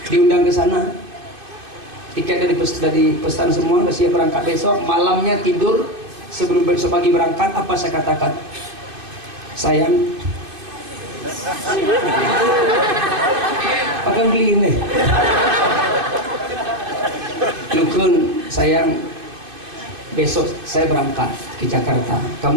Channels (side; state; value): left; late; 2.5 ms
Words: Diundang ke sana. Tiket dari pesan semua, udah siap berangkat besok. Malamnya tidur sebelum besok pagi berangkat. Apa saya katakan? Sayang, akan beli ini. Lukun, sayang, besok saya berangkat ke Jakarta.